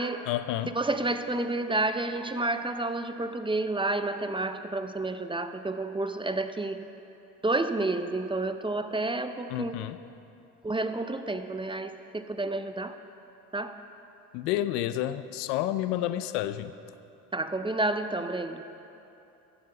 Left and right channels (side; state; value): both; normal; correlation 0.32